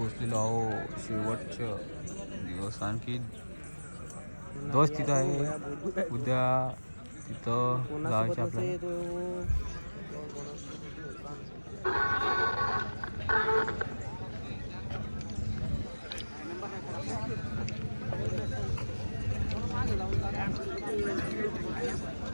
आहो. शेवटचं दिवस आणखी दिवस तिथं आहे. उद्या तिथं जायचं आपल्याला.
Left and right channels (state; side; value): inverted; both; correlation -1.00